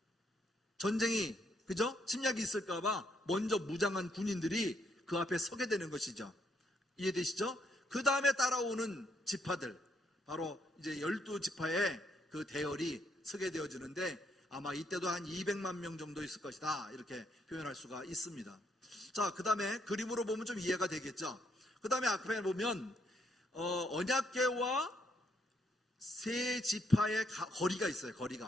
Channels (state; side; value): normal; both; correlation 0.73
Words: 전쟁이, 그죠? 침략이 있을까봐 먼저 무장한 군인들이 그 앞에 서게 되는 것이죠. 이해되시죠? 그 다음에 따라오는 지파들, 바로 이제 12지파의 그 대열이 서게 되어지는데, 아마 이때도 한 200만 명 정도 있을 것이다, 이렇게 표현할 수가 있습니다. 자, 그 다음에 그림으로 보면 좀 이해가 되겠죠. 그 다음에 앞에 보면 언약궤와 세 지파의 거리가 있어요.